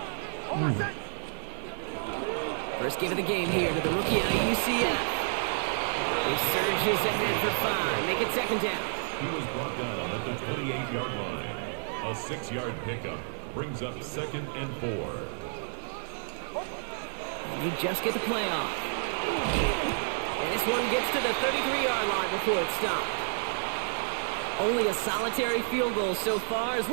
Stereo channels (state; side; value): silent; left; digital silence